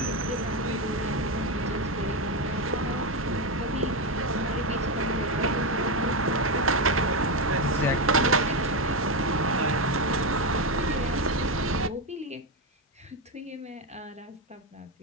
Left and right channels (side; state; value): both; normal; correlation 0.09